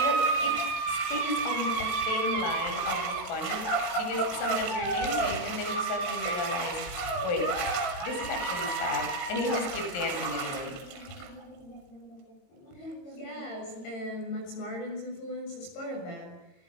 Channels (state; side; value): late; right; 22 ms